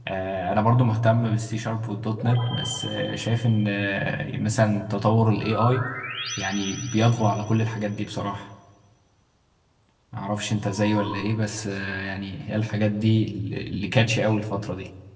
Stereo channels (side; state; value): both; identical; correlation 1.00